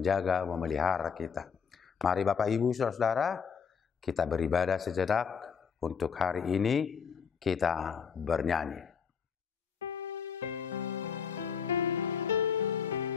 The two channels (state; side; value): quieter; right; 6.6 dB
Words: memelihara kita. Mari Bapak Ibu Saudara-saudara, kita beribadah sejenak. Untuk hari ini kita bernyanyi.